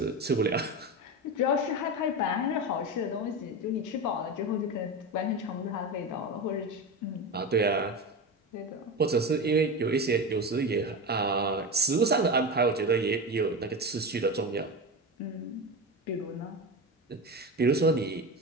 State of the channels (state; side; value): normal; both; correlation 0.21